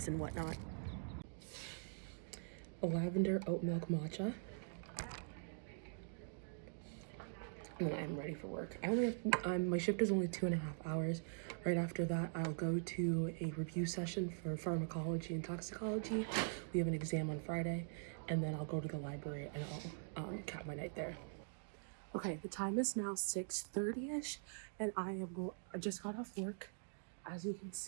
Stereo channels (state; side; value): silent; left; digital silence